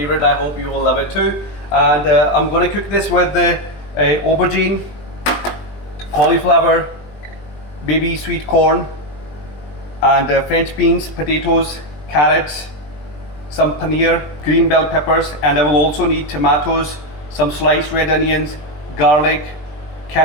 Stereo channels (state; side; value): late; right; 20 ms